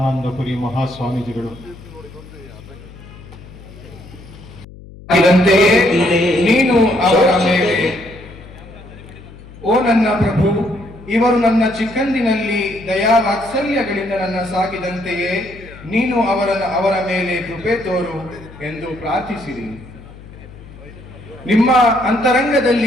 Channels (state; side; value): noise; left; hum, 18 dB below the sound